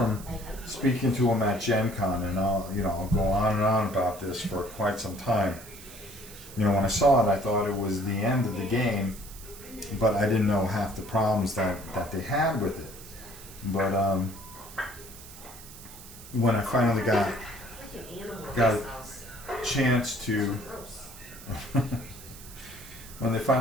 speaking to him at Gen Con, and I'll go on and on about this for quite some time. When I saw it, I thought it was the end of the game, but I didn't know half the problems that they had with it. But when I finally got a chance to when they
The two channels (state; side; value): noise; right; hiss, 17 dB below the sound